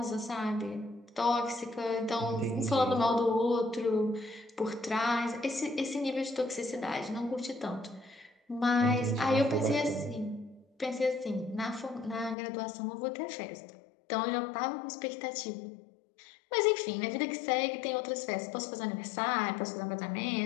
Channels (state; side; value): drops out; right; at 12.4 s